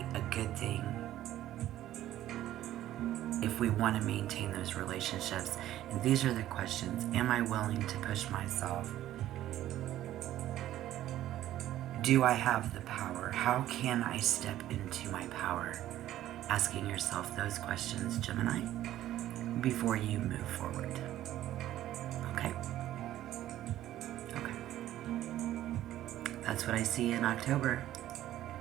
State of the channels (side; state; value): left; quieter; 13.3 dB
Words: a good thing if we want to maintain those relationships. And these are the questions. Am I willing to push myself? Do I have the power? How can I step into my power? Asking yourself those questions, Gemini, before you move forward. Okay? Okay. That's what I see in October.